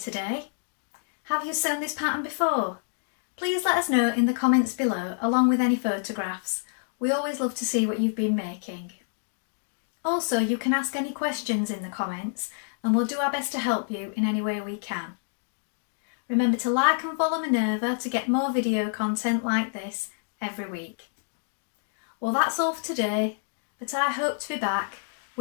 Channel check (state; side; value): silent; right; digital silence